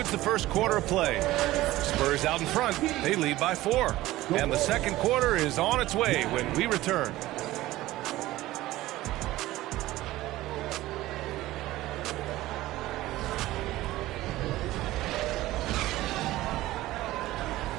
the first quarter of play. Spurs out in front. They lead by 4. And the second quarter is on its way when we return.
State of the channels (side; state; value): left; quieter; 16.7 dB